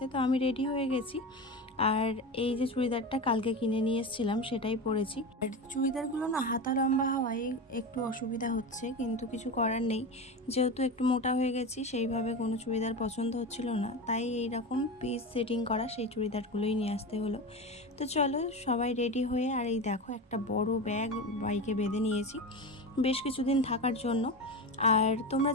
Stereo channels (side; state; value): both; normal; correlation 0.23